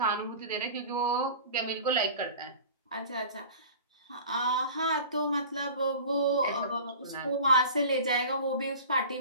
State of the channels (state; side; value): inverted; both; correlation -0.39